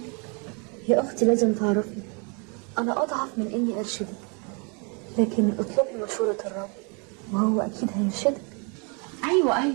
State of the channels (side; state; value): left; quieter; 34.7 dB